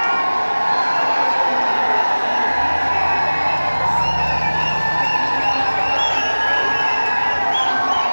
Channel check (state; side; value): inverted; both; correlation -1.00